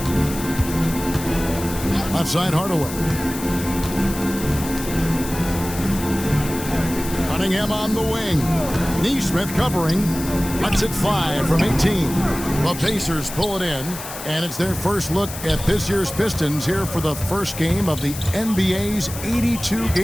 Left side, Hardaway. Cunningham on the wing. Neesmith covering. Lets it fly from 18. The Pacers pull it in, and it's their first look at this year's Pistons here for the first game of the NBA's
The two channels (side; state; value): left; noise; hiss, 10 dB below the sound